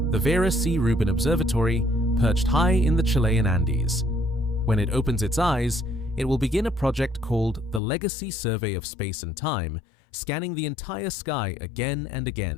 the Vera C. Rubin Observatory, perched high in the Chilean Andes. When it opens its eyes, it will begin a project called the Legacy Survey of Space and Time, scanning the entire sky again and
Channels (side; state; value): right; drops out; at 7.8 s